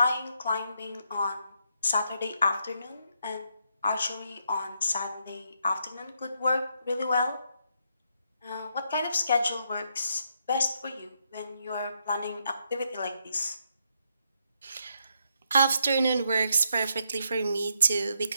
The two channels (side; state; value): both; inverted; correlation -0.77